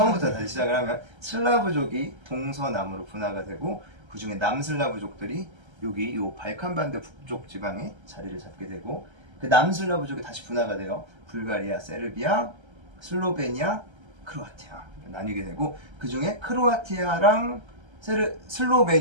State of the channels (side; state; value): left; late; 1.3 ms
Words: 다시 시작을 하면 슬라브족이 동서남으로 분화가 되고 그 중에 남슬라브족들이 여기 요 발칸반도 북쪽 지방에 자리를 잡게 되고 그 남슬라브족이 다시 분화가 돼요. 불가리아, 세르비아, 슬로베니아, 크로아티아 나뉘게 되고 그 중에 크로아티아랑